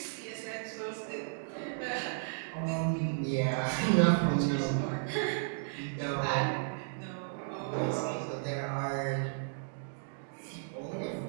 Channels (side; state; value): left; silent; digital silence